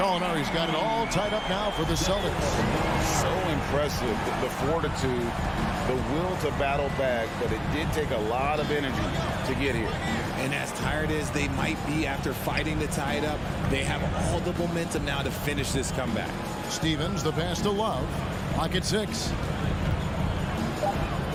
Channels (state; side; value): identical; both; correlation 1.00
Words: got it all tied up now for the Celtics. So impressive, the fortitude, the will to battle back, but it did take a lot of energy to get here. And as tired as they might be after fighting to tie it up, they have all the momentum now to finish this comeback. Stevens, the pass to Love. Pocket 6.